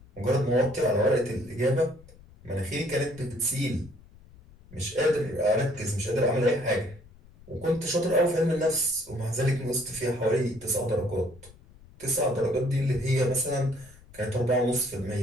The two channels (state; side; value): noise; left; rumble, 23 dB below the sound